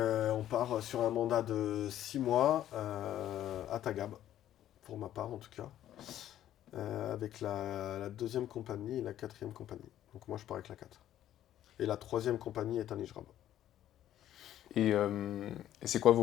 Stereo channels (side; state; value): right; quieter; 12.0 dB